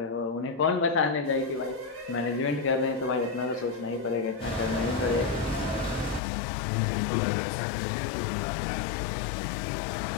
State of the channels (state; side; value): drops out; right; at 6.2 s